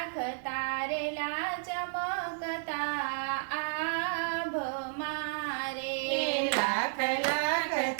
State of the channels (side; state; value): left; silent; digital silence